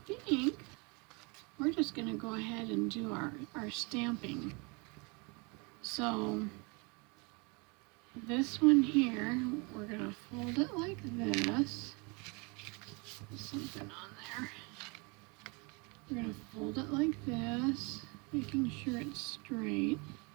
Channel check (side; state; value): left; quieter; 30.3 dB